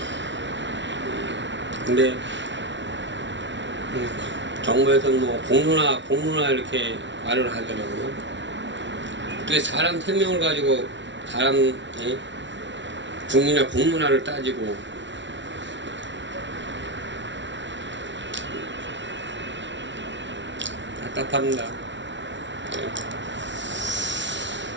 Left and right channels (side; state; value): left; late; 0.53 ms